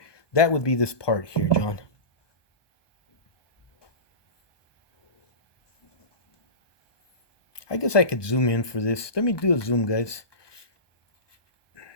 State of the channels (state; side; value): late; right; 1.2 ms